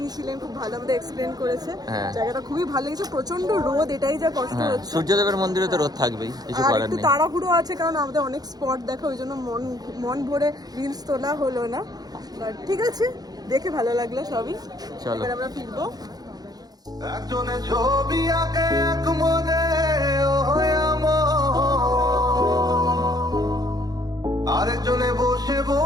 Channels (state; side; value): late; left; 0.19 ms